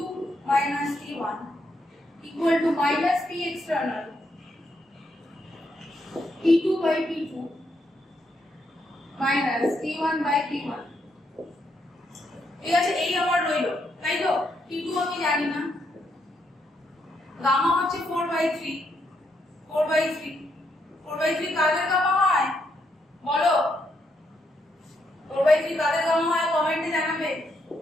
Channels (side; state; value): both; normal; correlation 0.77